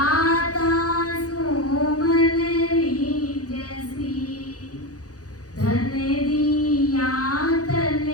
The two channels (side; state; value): right; late; 0.67 ms